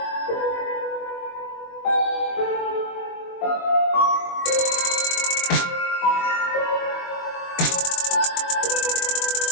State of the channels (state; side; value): late; right; 22 ms